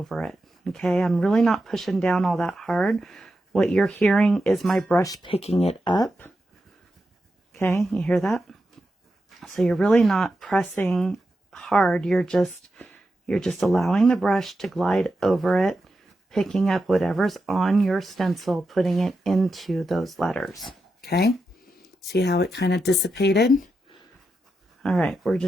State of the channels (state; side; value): normal; both; correlation 0.88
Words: it. okay? I'm really not pushing down all that hard. What you're hearing is my brush picking it up, okay? You hear that? So you're really not pressing hard. You're just allowing the brush to glide over it, picking up whatever's on your stencil, putting it into those letters, okay? See how it kind of dissipated? All right, we're